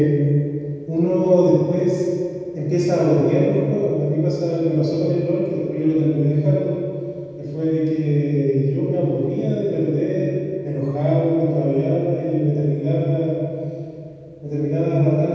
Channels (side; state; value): both; identical; correlation 1.00